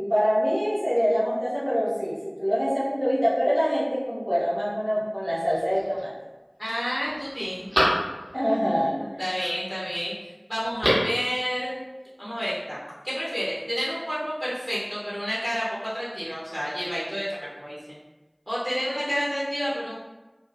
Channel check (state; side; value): identical; both; correlation 1.00